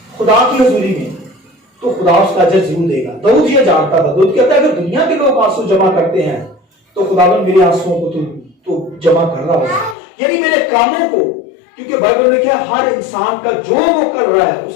खुदा की हजूरी में तो खुदा उसका अजर जरूर देगा। दाऊद ये जानता था, दाऊद कहता है अगर दुनिया के लोग आंसू जमा करते हैं तो खुदावंद मेरे आंसुओं को तो जमा कर रहा होगा, यानी मेरे कामों को, क्योंकि बाइबल में क्या, हर इंसान का जो वो कर रहा है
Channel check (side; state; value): right; drops out; at 10.0 s